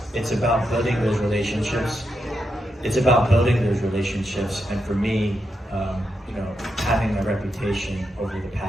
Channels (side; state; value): both; normal; correlation 0.84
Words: about building those relationships. It's about building those relationships, and for me, having a reputation over the